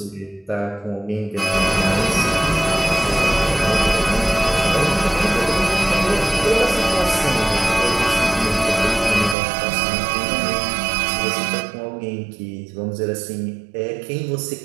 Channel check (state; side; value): drops out; left; at 9.3 s